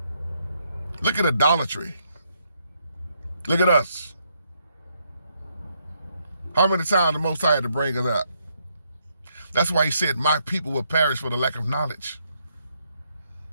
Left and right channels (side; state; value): both; inverted; correlation -0.74